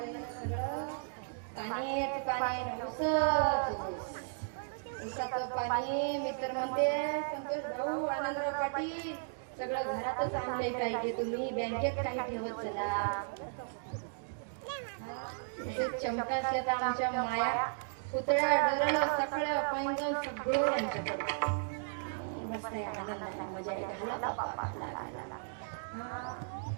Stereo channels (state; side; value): silent; left; digital silence